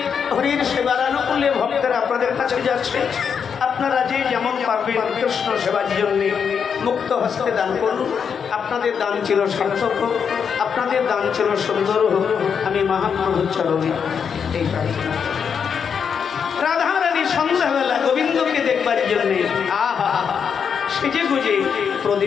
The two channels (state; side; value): quieter; right; 6.8 dB